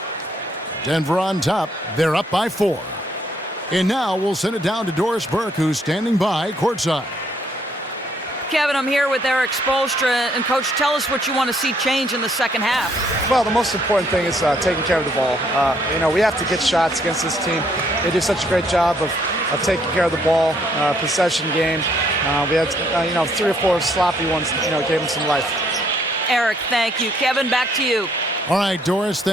Denver on top. They're up by 4. And now we'll send it down to Doris Burke, who's standing by courtside. Kevin, I'm here with Eric Spoelstra. And, Coach, tell us what you want to see change in the second half. Well, the most important thing is taking care of the ball. We have to get shots against this team. They do such a great job of taking care of the ball, possession game. We had, 3 or 4 sloppy ones, gave them some life. Eric, thank you. Kevin, back to you. All right, Doris,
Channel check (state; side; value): normal; both; correlation 0.68